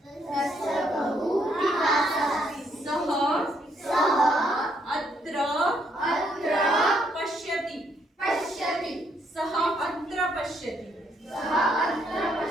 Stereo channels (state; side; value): normal; both; correlation 0.72